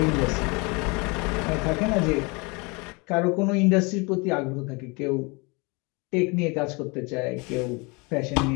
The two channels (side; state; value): right; quieter; 28.7 dB